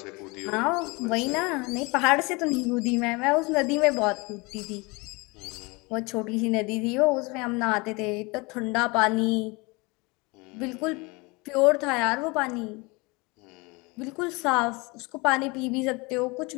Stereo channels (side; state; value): right; quieter; 26.5 dB